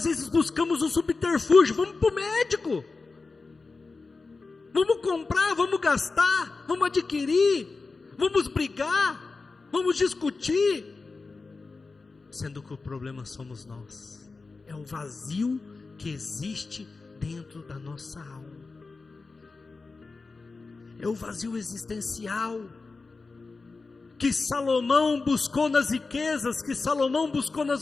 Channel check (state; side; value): quieter; right; 4.0 dB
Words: vezes buscamos um subterfúgio, vamos para o médico, vamos comprar, vamos gastar, vamos adquirir, vamos brigar, vamos discutir, sendo que o problema somos nós, é o vazio que existe dentro da nossa alma, é o vazio existencial, que Salomão buscou nas riquezas, que Salomão buscou